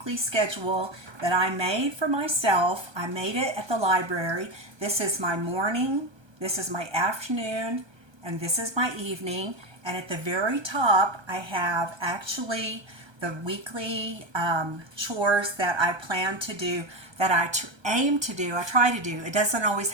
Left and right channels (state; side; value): late; left; 1.3 ms